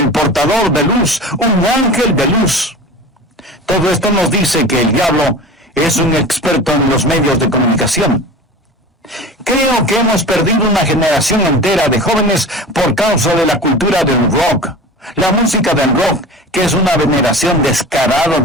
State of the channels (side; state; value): both; normal; correlation 0.35